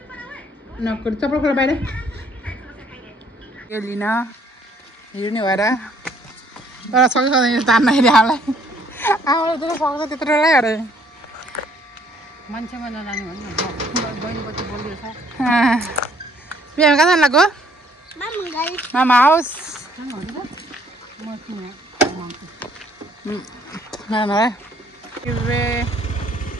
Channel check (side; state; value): both; normal; correlation 0.63